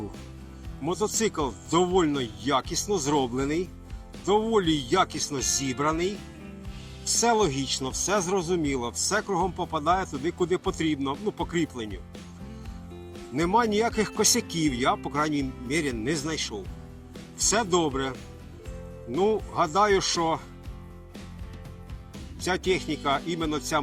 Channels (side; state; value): both; identical; correlation 1.00